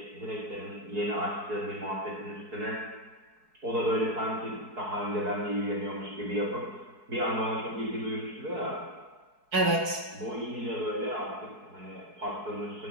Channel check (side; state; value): left; late; 4.7 ms